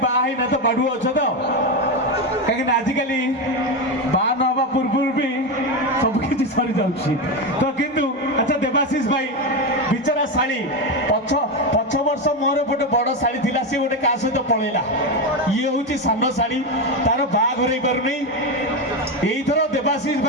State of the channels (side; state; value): both; normal; correlation 0.13